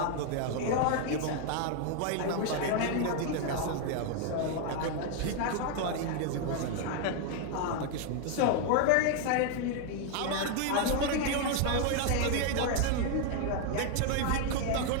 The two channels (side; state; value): both; different; correlation 0.01